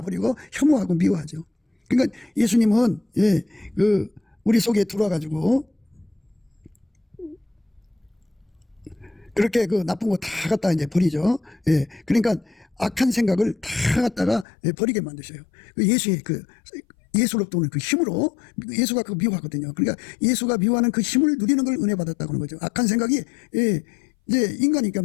버리고 혐오하고 미워하죠. 그러니까 예수님은 우리 속에 들어와가지고 그렇게 그 나쁜 거 다 갖다 이제 버리죠. 그러니까 악한 생각을 다 갖다가 버리게 만드셔요. 예수로부터 오는 그 힘으로 예수가 그 미워하거든요. 그러니까 예수가 미워하는 그 힘을 누리는 걸 은혜 받았다고 하는 거죠. 악한 생각이 이제 인간이니까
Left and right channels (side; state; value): right; drops out; at 14.5 s